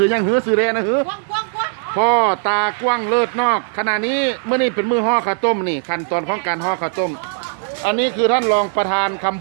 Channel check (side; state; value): left; silent; digital silence